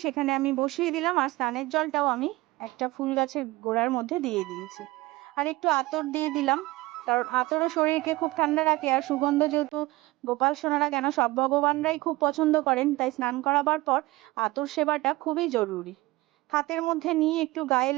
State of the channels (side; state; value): left; quieter; 20.2 dB